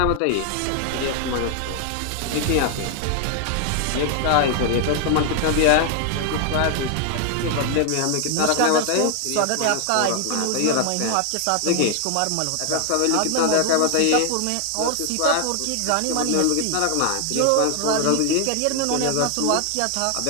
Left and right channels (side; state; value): both; different; correlation 0.00